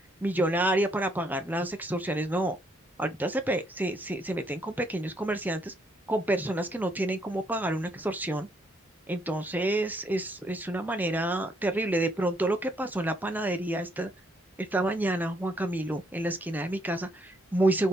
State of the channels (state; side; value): normal; both; correlation 0.71